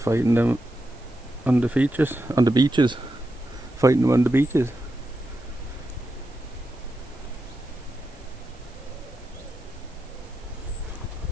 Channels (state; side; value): noise; right; hiss, 28 dB below the sound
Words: them on the beaches. Fighting them on the beaches.